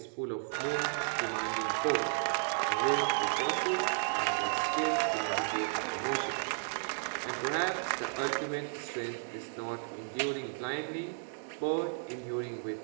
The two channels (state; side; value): silent; left; digital silence